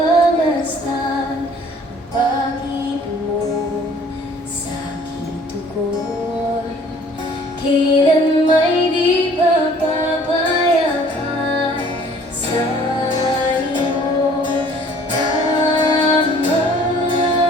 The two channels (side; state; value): both; normal; correlation 0.54